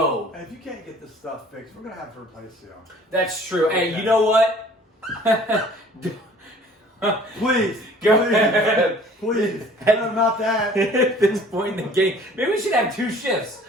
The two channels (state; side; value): normal; both; correlation 0.51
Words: And if you can't get this stuff fixed, we're going to have to replace you. That's true. Okay. Hey, you know what? Please. Go please, ahead. Please. No, not that. At this point in the game, maybe we should have 2 shifts.